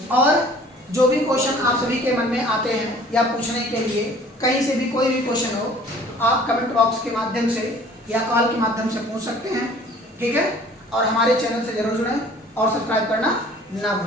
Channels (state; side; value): normal; both; correlation 0.51